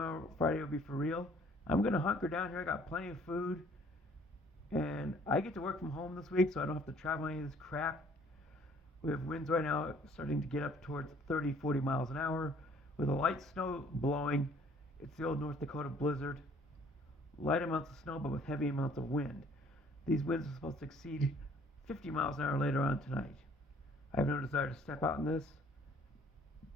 Friday, will be for real. I'm going to hunker down here. I got plenty of food. And I get to work from home this week, so I don't have to travel any of this crap. We have winds right now starting to get up towards 30, 40 miles an hour. With a light snow blowing, it's the old North Dakota blizzard. Light amounts of snow, but with heavy amounts of wind. These winds are supposed to exceed 50 miles an hour later on tonight. I have no desire to step out in this,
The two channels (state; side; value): normal; both; correlation 0.58